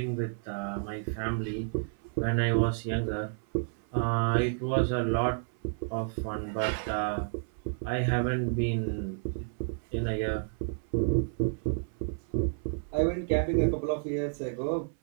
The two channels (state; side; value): silent; left; 57 dB below the other